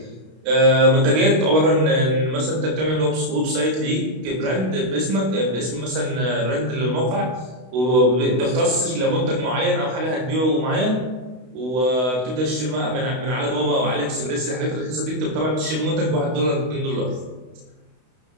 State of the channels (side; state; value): left; late; 32 ms